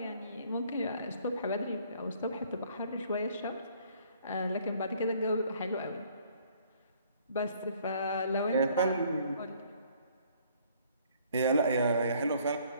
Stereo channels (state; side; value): inverted; both; correlation -0.61